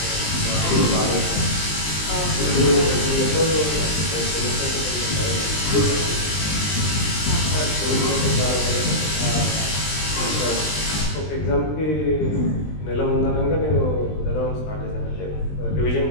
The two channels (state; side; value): late; right; 20 ms